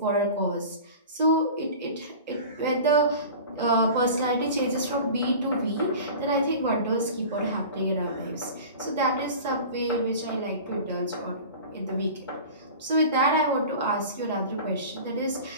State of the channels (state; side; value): inverted; both; correlation -0.37